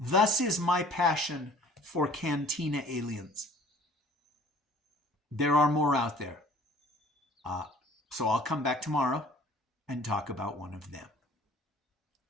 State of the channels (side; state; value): both; normal; correlation 0.51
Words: is my passion for Cantina aliens. There are more out there. So I'll come back tomorrow and talk about one of them.